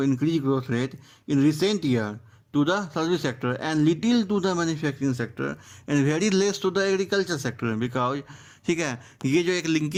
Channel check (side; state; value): both; identical; correlation 1.00